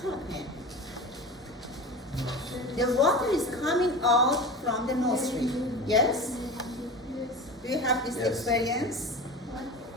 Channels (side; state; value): both; normal; correlation 0.31